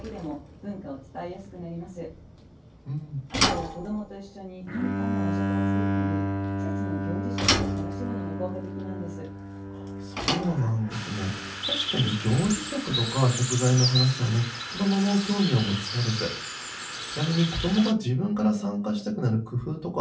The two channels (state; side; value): identical; both; correlation 1.00